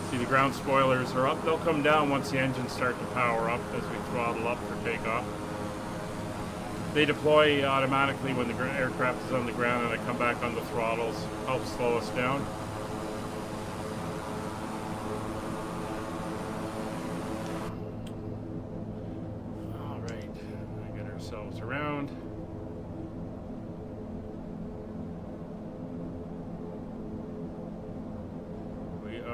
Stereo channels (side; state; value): both; identical; correlation 1.00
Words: See, the ground spoilers are up. They'll come down once the engines start to power up as we throttle up for takeoff. They deploy automatically when the aircraft is on the ground, and I come back on the throttles, help slow us down. All right, we get ourselves around. We